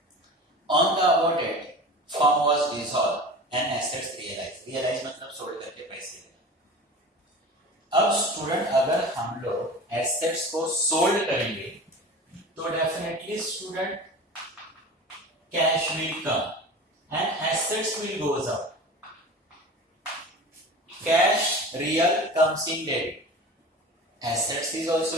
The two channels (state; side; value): normal; both; correlation 0.35